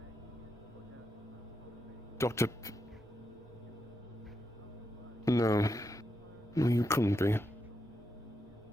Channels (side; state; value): both; normal; correlation 0.84